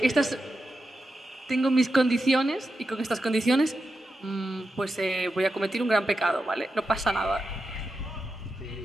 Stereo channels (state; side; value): normal; both; correlation 0.88